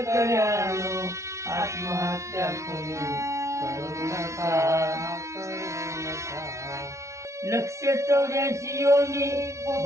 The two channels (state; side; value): late; left; 0.14 ms